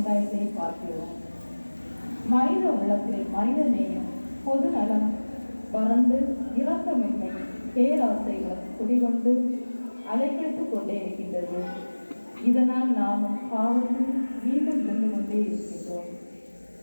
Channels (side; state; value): both; inverted; correlation -1.00